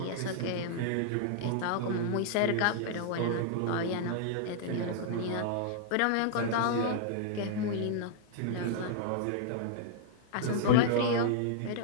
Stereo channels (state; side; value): different; both; correlation -0.01